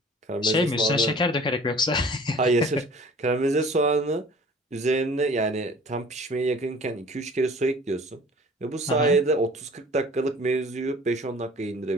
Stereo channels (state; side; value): normal; both; correlation 0.48